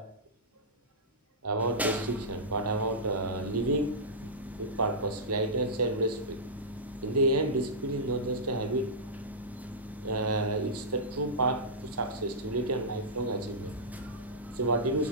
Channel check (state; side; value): normal; both; correlation -0.15